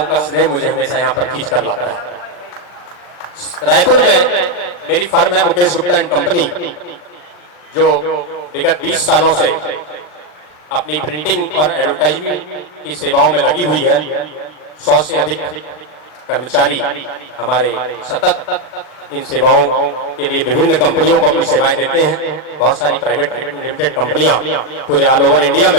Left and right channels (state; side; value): late; right; 39 ms